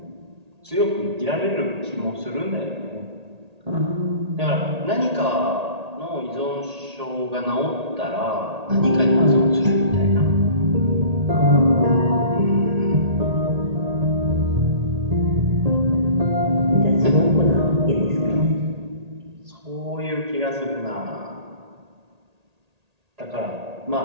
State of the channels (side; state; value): left; late; 1.8 ms